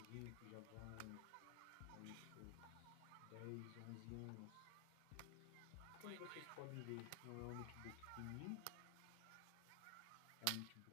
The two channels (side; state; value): both; different; correlation 0.00